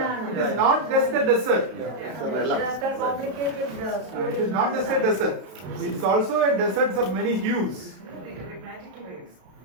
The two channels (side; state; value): left; late; 32 ms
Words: is not just a desert. It is not just a desert. It is also a desert of many hues.